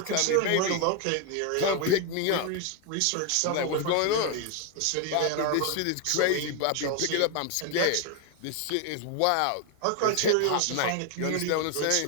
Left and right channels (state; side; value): different; both; correlation 0.01